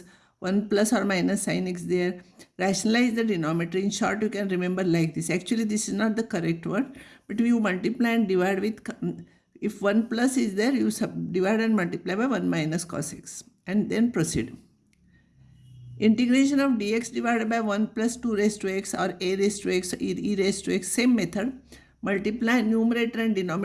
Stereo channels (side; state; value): both; identical; correlation 1.00